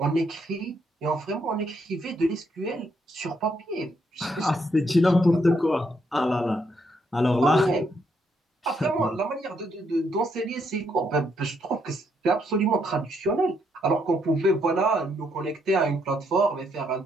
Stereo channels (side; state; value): both; normal; correlation 0.75